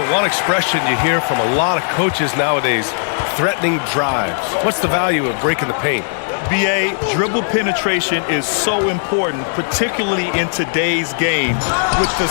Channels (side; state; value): right; silent; digital silence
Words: one expression you hear from a lot of coaches nowadays, threatening drives. What's the value of breaking the paint? B.A., dribble penetration is so important, particularly in today's game. With the